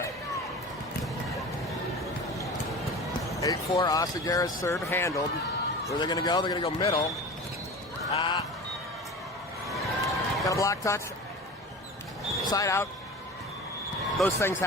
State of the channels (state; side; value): normal; both; correlation 0.34